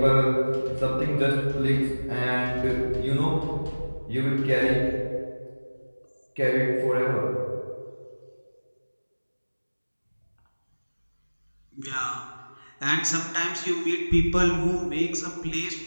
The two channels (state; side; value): inverted; both; correlation -1.00